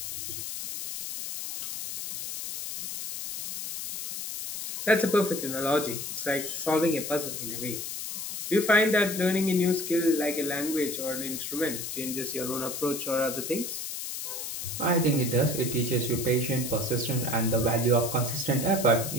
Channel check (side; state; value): left; noise; hiss, 6 dB below the sound